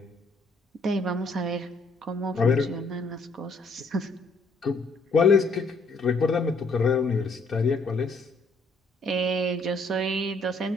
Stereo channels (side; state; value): right; quieter; 3.0 dB